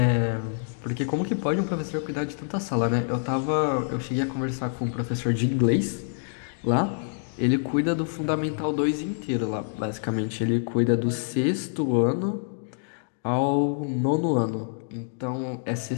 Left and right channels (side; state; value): right; silent; digital silence